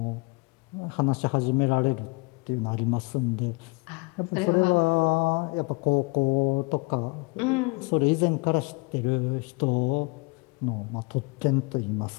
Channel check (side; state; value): right; quieter; 28.4 dB